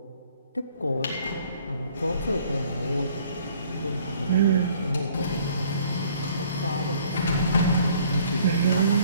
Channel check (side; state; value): both; inverted; correlation -0.58